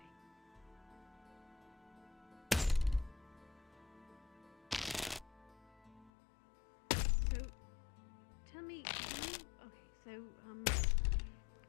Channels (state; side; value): drops out; right; at 6.1 s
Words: tell me, okay, so,